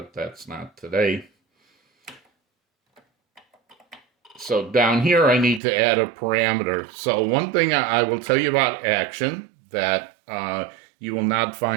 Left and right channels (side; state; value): left; drops out; at 5.6 s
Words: that's not today. So down here I need to add a parameter. So one thing I will tell you about Action that you will not